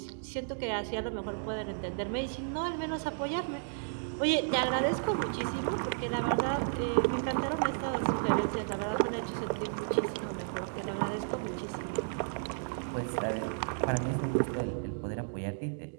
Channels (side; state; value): left; silent; digital silence